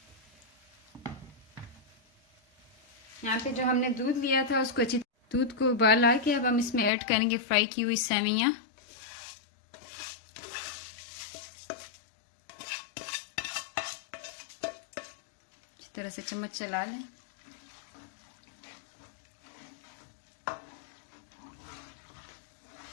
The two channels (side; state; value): right; drops out; at 6.9 s